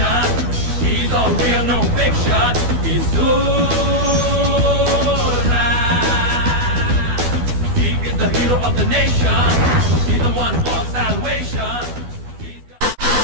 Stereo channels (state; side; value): late; left; 12 ms